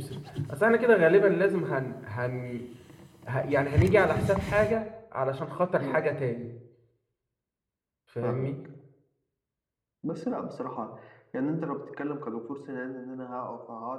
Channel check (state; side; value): identical; both; correlation 1.00